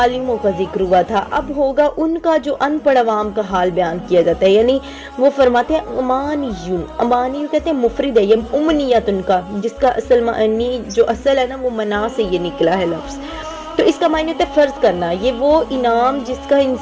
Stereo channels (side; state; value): both; identical; correlation 1.00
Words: کا ذکر ہوا تھا، اب ہوگا ان کا جو ان پڑھ عوام کا حال بیان کیا جاتا ہے، یعنی وہ فرماتے ہیں امانیون، امانی کہتے ہیں مفرد ہے، یہ امنیت ان کا، جس کا اصل معنی جو اصل ہے نا وہ منا سے یہ نکلا ہے لفظ، تو اس کا معنی ہوتا ہے فرض کرنا، یہ وہ انعام جس کا